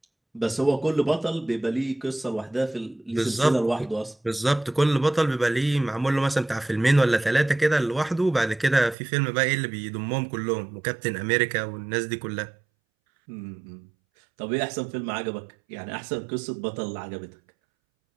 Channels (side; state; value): left; drops out; at 9.0 s